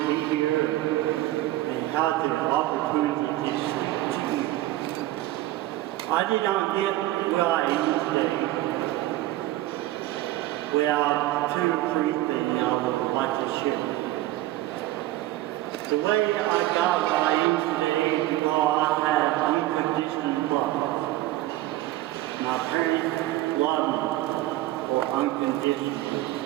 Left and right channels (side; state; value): left; quieter; 16.1 dB